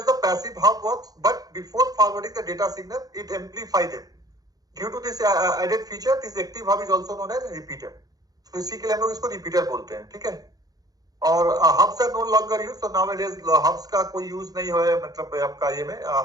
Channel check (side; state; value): left; late; 0.18 ms